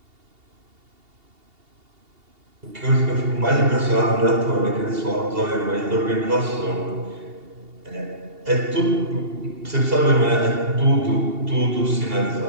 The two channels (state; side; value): late; left; 2.8 ms